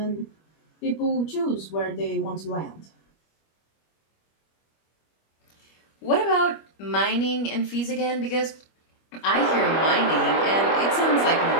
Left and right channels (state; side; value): late; right; 25 ms